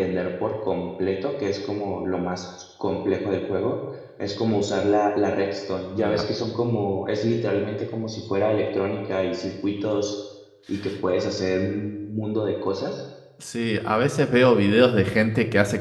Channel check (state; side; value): identical; both; correlation 1.00